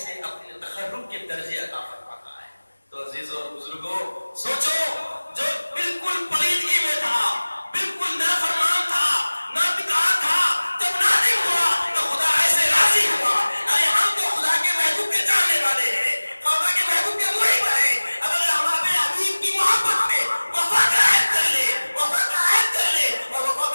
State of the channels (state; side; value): inverted; both; correlation -1.00